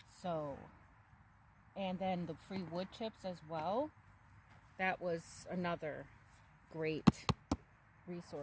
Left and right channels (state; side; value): identical; both; correlation 1.00